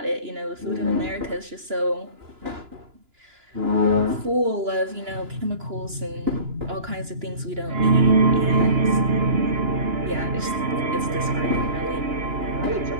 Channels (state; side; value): late; left; 2.9 ms